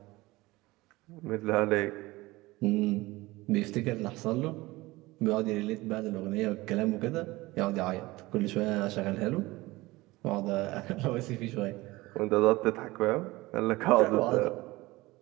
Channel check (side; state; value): left; quieter; 20.3 dB